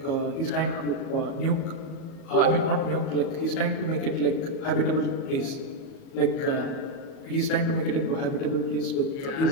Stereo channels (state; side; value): late; right; 37 ms